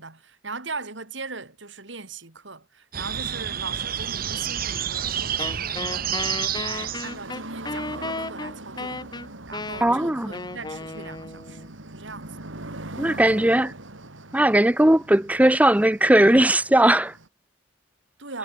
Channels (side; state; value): both; normal; correlation 0.74